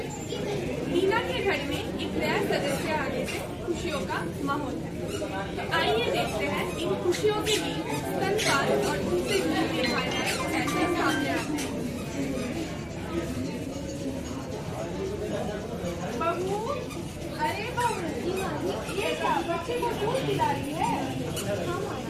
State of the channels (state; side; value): identical; both; correlation 1.00